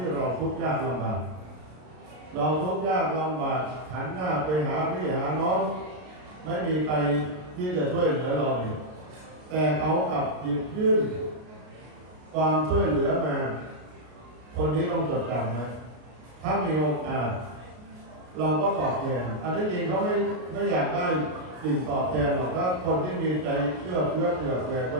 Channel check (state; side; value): late; left; 33 ms